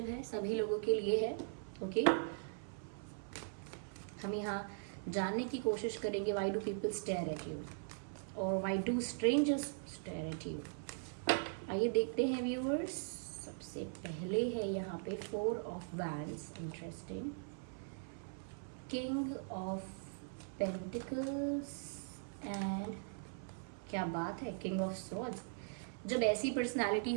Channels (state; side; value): silent; left; 51 dB below the other